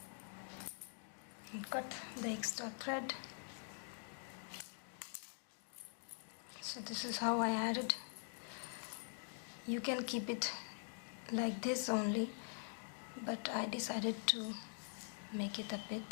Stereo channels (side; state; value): right; silent; digital silence